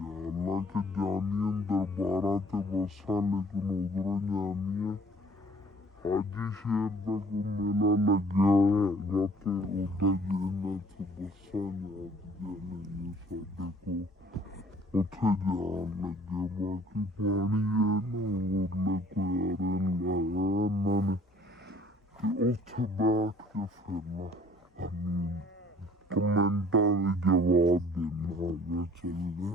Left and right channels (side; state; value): both; normal; correlation 0.55